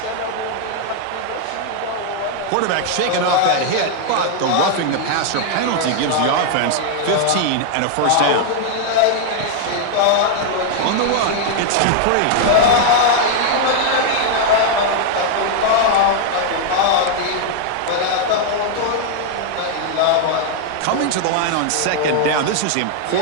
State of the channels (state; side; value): different; both; correlation 0.00